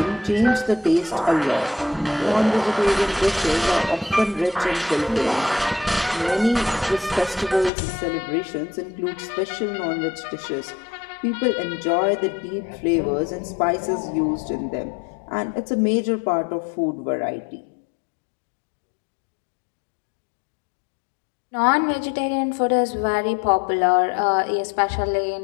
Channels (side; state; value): right; drops out; at 7.7 s